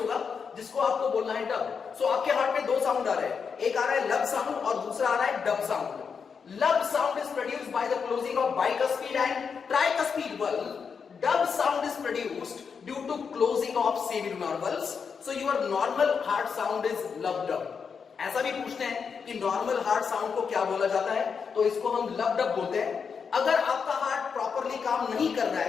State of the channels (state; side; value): quieter; right; 6.1 dB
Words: जिसको आपको बोलना है dub. सो आपके heart में दो साउंड आ रहे हैं, एक आ रहा है लब साउंड और दूसरा आ रहा है dub sound. Lub sound is produced by the closing of bicuspid and tricuspid valve. Dub sound is produced due to closing of semilunar valves. So your normal heart sound is lub dub. ऐसा भी पूछते हैं कि normal heart sound को क्या बोला जाता है, तो इसको हम लब डब बोलते हैं। अगर आपका हार्ट प्रॉपरली काम नहीं कर रहा